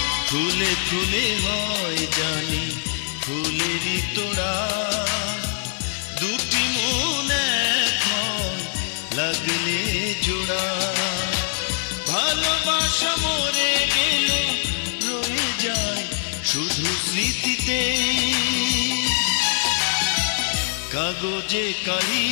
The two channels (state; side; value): silent; right; 61 dB below the other